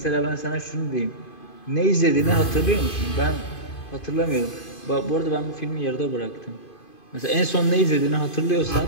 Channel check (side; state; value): right; late; 2.5 ms